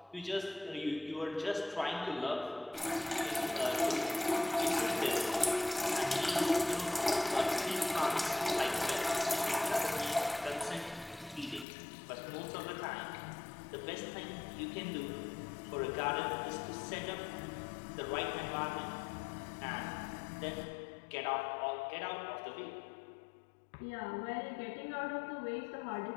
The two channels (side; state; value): right; drops out; at 11.7 s